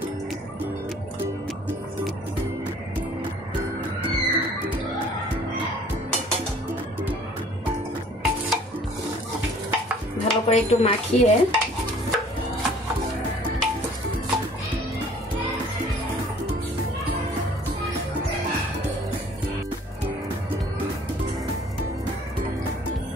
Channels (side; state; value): both; normal; correlation 0.53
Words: ভালো করে একটু মাখিয়ে